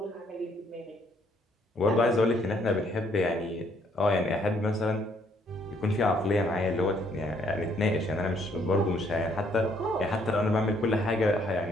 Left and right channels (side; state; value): both; normal; correlation 0.68